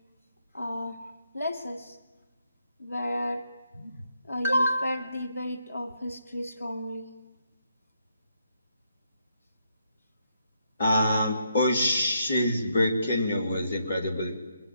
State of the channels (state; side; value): inverted; both; correlation -0.77